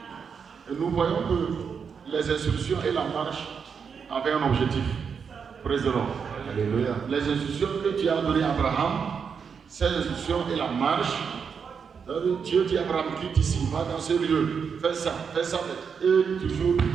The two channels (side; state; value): left; quieter; 6.4 dB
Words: Et nous voyons que les instructions et la marche avaient un objectif. Praise the Lord. Alléluia. Les instructions que Dieu a données à Abraham, ces instructions et la marche, Dieu dit à Abraham, quitte ici, va dans ce lieu, fais ça, et toujours